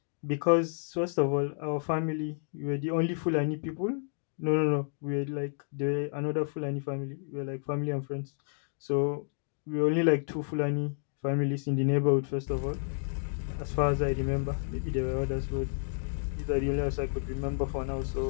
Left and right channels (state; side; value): silent; right; digital silence